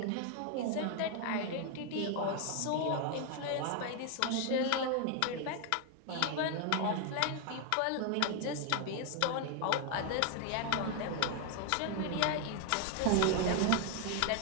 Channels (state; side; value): different; both; correlation 0.01